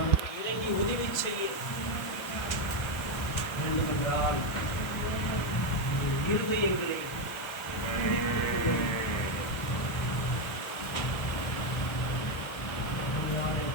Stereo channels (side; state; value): right; late; 1.1 ms